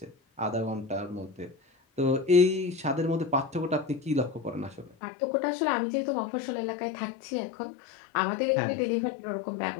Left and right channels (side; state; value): right; drops out; at 5.0 s